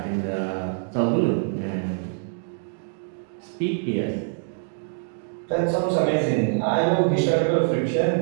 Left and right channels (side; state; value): left; silent; 62 dB below the other